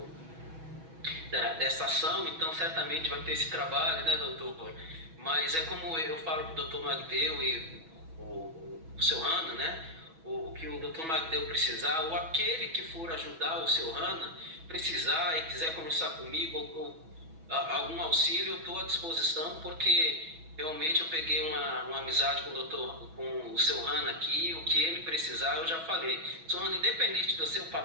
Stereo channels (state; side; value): late; left; 6.1 ms